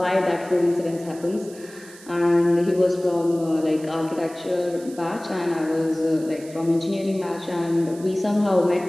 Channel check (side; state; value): right; noise; hiss, 21 dB below the sound